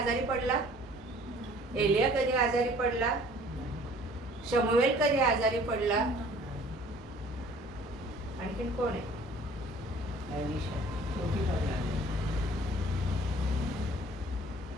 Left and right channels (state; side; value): normal; both; correlation 0.52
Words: पडला? एलिया कधी आजारी पडला? शमूएल कधी आजारी पडला? आणखीन कोण आहे?